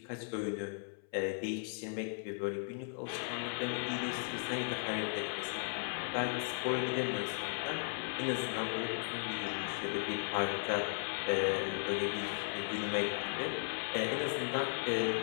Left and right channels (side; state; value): right; silent; 53 dB below the other